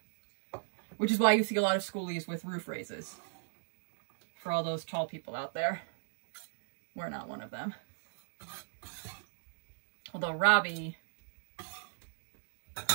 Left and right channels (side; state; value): left; silent; digital silence